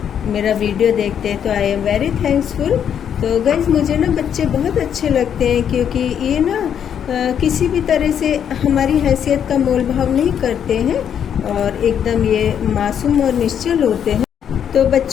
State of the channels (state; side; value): quieter; right; 8.6 dB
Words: मेरा वीडियो देखते हैं तो आई एम वेरी थैंक्सफुल। तो गाइस, मुझे ना बच्चे बहुत अच्छे लगते हैं क्योंकि ये ना किसी भी तरह से हमारी हैसियत का मोल भाव नहीं करते हैं और एकदम ये मासूम और निश्चल होते हैं। तो